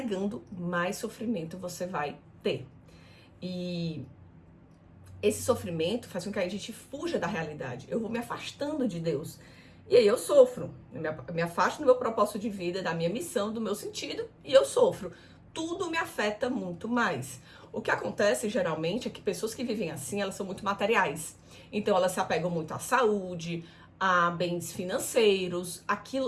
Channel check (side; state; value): both; identical; correlation 1.00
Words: mais sofrimento você vai ter. E esse sofrimento faz com que a gente fuja da realidade. Eu vou me afastando de Deus. E aí eu sofro. Eu me afasto do meu propósito de vida, da minha missão, do meu sentido, e eu sofro. Tudo me afeta muito mais. O que acontece geralmente é que pessoas que vivem assim, elas são muito materiais. Então elas se apegam muito à saúde, a bens financeiros.